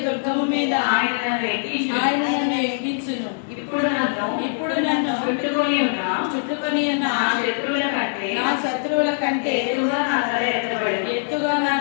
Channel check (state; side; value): silent; right; digital silence